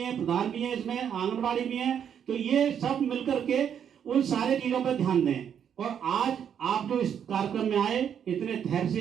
प्रधान भी है, इसमें आंगनबाड़ी भी है, तो ये सब मिलकर के उन सारे चीजों पर ध्यान दें। और आज आप जो इस कार्यक्रम में आए, इतने धैर्य से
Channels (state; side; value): quieter; left; 8.5 dB